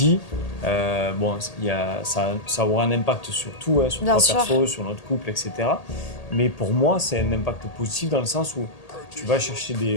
ça aura un impact sur tout, sur toi perso, sur notre couple, etc. Mais pour moi, c'est un impact positif dans le sens où tu vas chercher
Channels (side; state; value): right; late; 1.8 ms